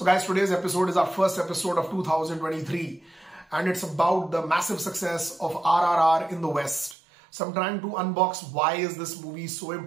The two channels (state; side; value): drops out; left; at 7.0 s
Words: guys, today's episode is our first episode of 2023. And it's about the massive success of RRR in the West. So I'm trying to unbox why is this movie so